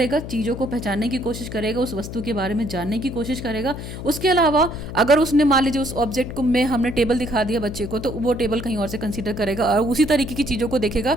चीज़ों को पहचानने की कोशिश करेगा, उस वस्तु के बारे में जानने की कोशिश करेगा। उसके अलावा अगर उसने मान लीजिए उस ऑब्जेक्ट को में हमने टेबल दिखा दिया बच्चे को, तो वो टेबल कहीं और से कंसीडर करेगा और उसी तरीके की चीज़ों को देखेगा,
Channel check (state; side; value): noise; left; hum, 9 dB below the sound